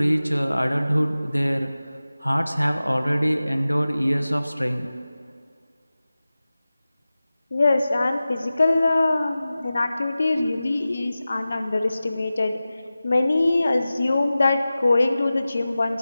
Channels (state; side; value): inverted; both; correlation -0.96